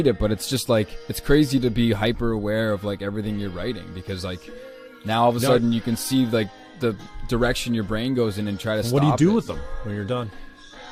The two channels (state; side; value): identical; both; correlation 1.00